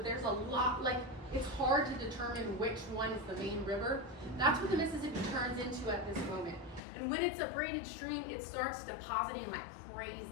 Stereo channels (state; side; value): drops out; right; at 6.8 s